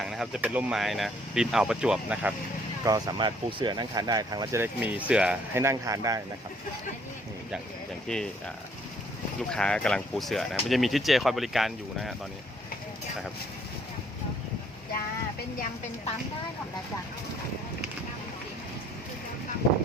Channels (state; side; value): normal; both; correlation 0.64